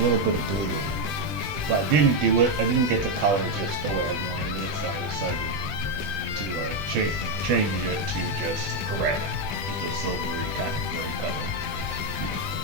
bit of blue in it. But I didn't do it. I didn't get the color just the way I wanted it, so I decided to change it to just gray, just a silvery kind of gray color.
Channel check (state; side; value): late; left; 20 ms